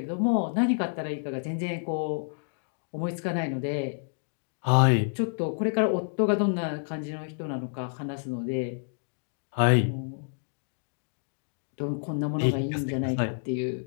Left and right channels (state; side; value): silent; right; digital silence